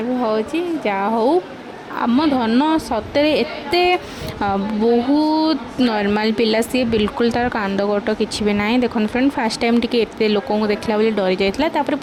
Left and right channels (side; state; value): both; identical; correlation 1.00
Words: जा हो आम धन सतरे एते बहुत नॉर्मल पिला सी बिल्कुल तार कांद गोट किसी भी ना देखो फ्रेंड फास्ट टाइम टी एत लोक देखला बोली डरी जाता